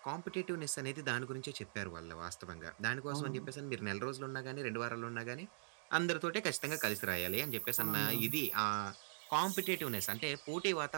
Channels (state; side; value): silent; left; digital silence